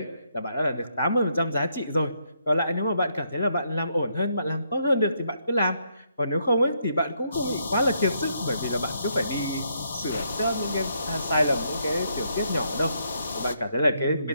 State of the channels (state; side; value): inverted; both; correlation -0.75